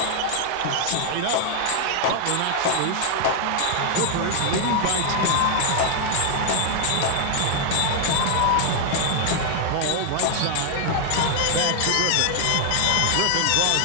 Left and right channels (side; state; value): both; different; correlation 0.00